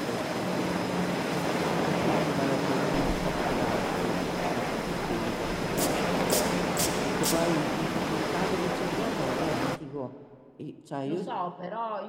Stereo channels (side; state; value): both; identical; correlation 1.00